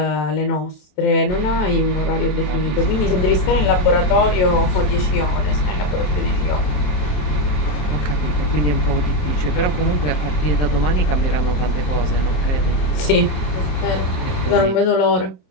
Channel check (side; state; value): right; late; 27 ms